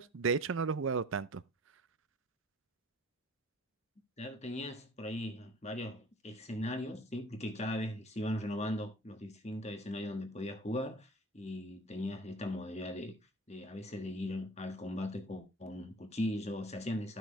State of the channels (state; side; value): normal; both; correlation 0.46